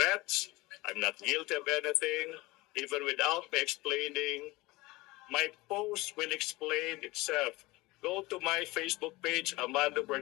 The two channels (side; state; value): right; quieter; 21.3 dB